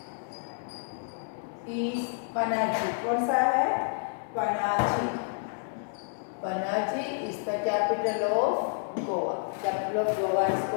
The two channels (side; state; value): right; silent; digital silence